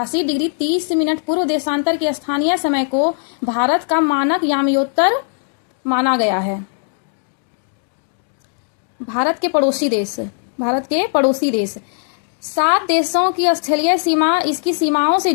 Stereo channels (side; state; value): right; silent; digital silence